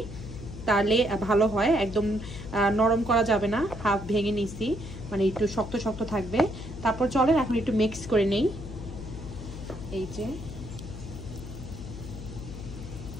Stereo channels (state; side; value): noise; left; hum, 11 dB below the sound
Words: তাহলে ভালো হয়। একদম নরম করা যাবে না, হাফ ভেঙে নিছি, মানে একটু শক্ত শক্ত থাকবে। তারপর চলেন এখন একটু মিক্স করে নেই। এই যে